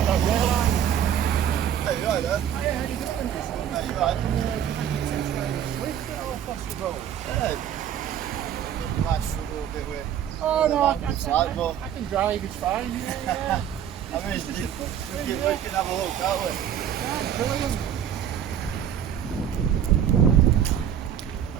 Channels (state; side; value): quieter; left; 9.6 dB